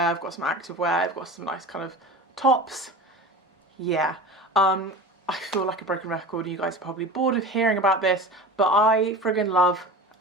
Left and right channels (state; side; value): normal; both; correlation 0.33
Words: I've got some activewear, I've got some nice kind of tops. Yeah. I feel like a broken record. You guys are probably bored of hearing about this, but I friggin' love